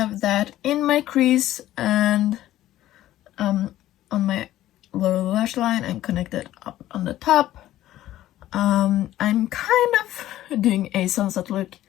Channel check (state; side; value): quieter; right; 13.9 dB